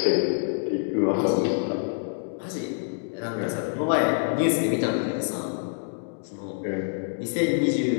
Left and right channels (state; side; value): silent; right; digital silence